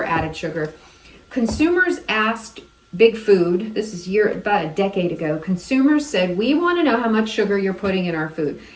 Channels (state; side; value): identical; both; correlation 1.00